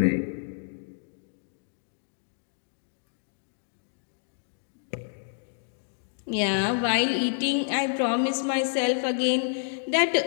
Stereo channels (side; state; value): right; silent; digital silence